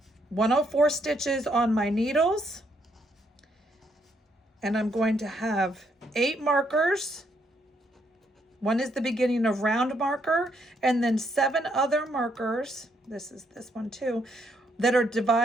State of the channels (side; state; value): both; normal; correlation 0.73